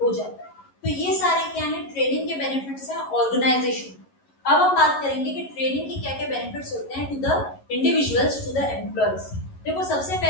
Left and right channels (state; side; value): late; right; 11 ms